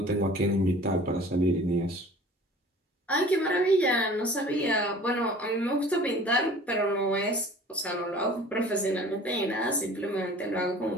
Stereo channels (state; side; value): normal; both; correlation 0.46